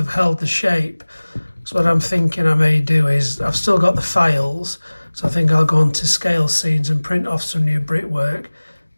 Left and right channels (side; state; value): both; inverted; correlation -1.00